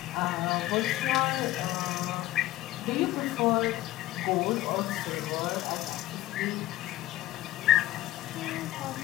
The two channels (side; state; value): right; quieter; 15.7 dB